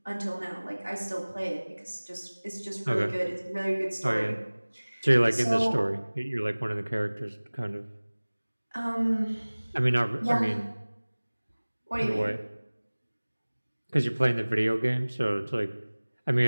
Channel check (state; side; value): inverted; both; correlation -1.00